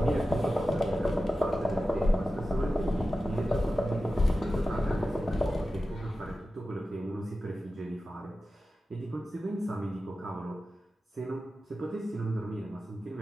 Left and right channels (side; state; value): both; normal; correlation 0.93